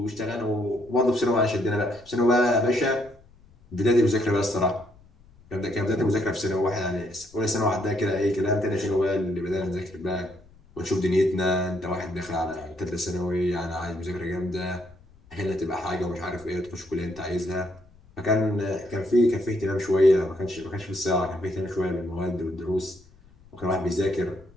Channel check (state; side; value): noise; left; rumble, 27 dB below the sound